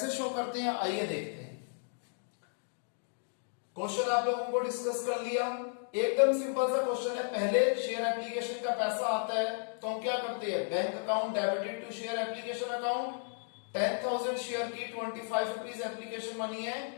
शो करते हैं, आइए देखते हैं। क्वेश्चन आप लोगों को डिस्कस कर लिया। एकदम सिंपल सा क्वेश्चन है। पहले शेयर एप्लीकेशन का पैसा आता है तो हम क्या करते हैं? Bank account debited to share application account. 10,000 share की 25 रुपीज एप्लीकेशन मनी है,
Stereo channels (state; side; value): silent; right; 55 dB below the other